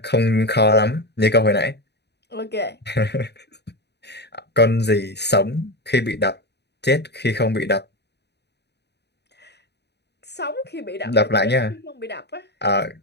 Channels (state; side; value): late; right; 0.49 ms